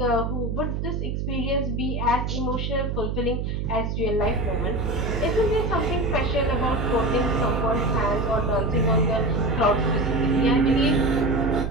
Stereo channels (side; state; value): right; noise; hum, 2 dB below the sound